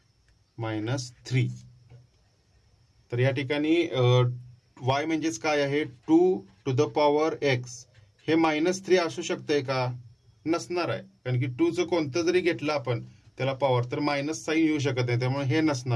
तर या ठिकाणी y म्हणजेच काय आहे 2 to the power x. हे -3 असू शकते का, नसणार आहे, कारण की 2 चं कोणतं जरी घेतलं आपण त्याला पॉवर तर मायनस साईन येऊ शकत नाही, त्यामुळे हे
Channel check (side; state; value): both; identical; correlation 1.00